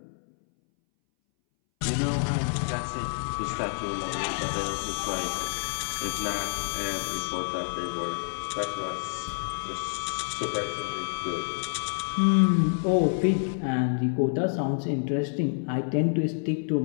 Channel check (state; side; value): silent; right; 59 dB below the other